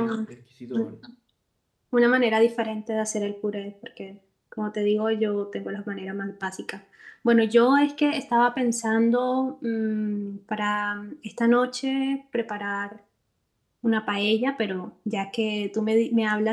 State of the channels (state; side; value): identical; both; correlation 1.00